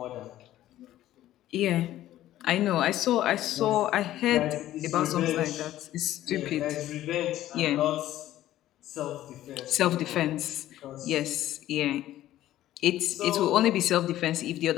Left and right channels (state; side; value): quieter; right; 13.8 dB